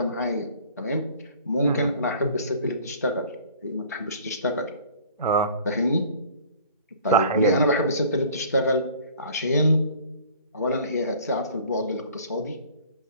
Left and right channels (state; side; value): inverted; both; correlation -0.49